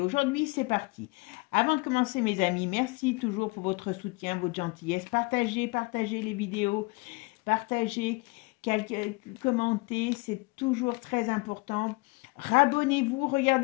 aujourd'hui, c'est parti. Avant de commencer, mes amis, merci toujours pour votre soutien, votre gentillesse. Partagez les vidéos, partagez, commentez, c'est toujours très important. Rabonnez-vous,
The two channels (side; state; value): right; quieter; 26.6 dB